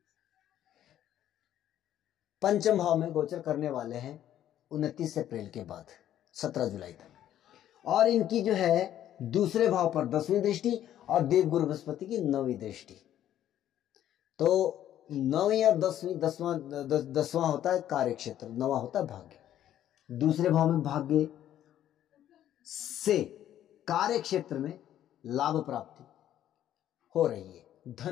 पंचम भाव में गोचर करने वाले हैं 29 अप्रैल के बाद 17 जुलाई तक, और इनकी जो है दूसरे भाव पर 10वीं दृष्टि और देवगुरु बृहस्पति की 9वीं दृष्टि। तो 9वीं और 10वां होता है कार्य क्षेत्र, 9वां होता है भाग्य। दूसरे भाव में भाग्य से कार्य क्षेत्र में लाभ प्राप्ति हो रही है,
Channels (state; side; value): quieter; right; 11.6 dB